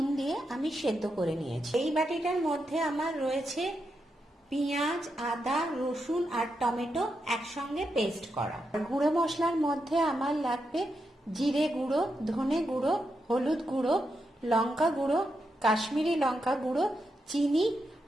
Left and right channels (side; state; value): both; normal; correlation 0.85